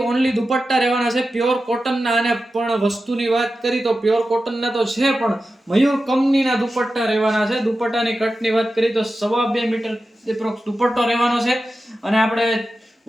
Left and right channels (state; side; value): normal; both; correlation 0.92